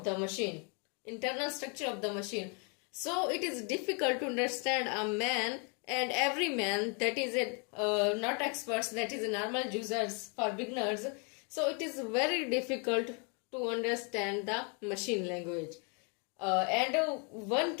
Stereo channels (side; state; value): right; quieter; 36.1 dB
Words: the machine. So it is difficult to understand a man and every man, that is not experts, that is normal users, for beginners. So it is very difficult to understand the machine language. And one